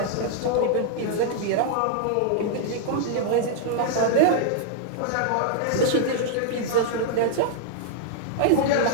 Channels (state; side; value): different; both; correlation -0.01